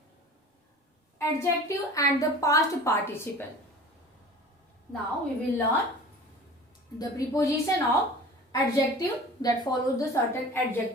adjective and the past participle. Now we will learn the preposition of adjective that follows the certain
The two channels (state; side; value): normal; both; correlation 0.41